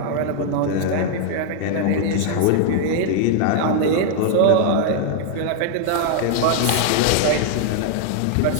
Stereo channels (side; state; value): both; different; correlation 0.00